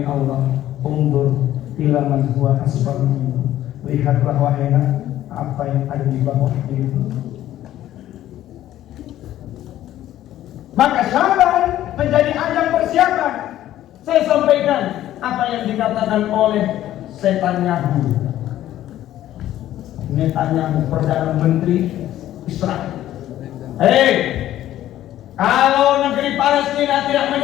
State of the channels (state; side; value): quieter; right; 13.1 dB